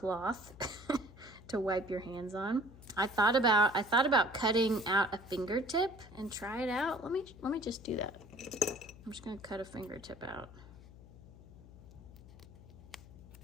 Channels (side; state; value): left; noise; hum, 19 dB below the sound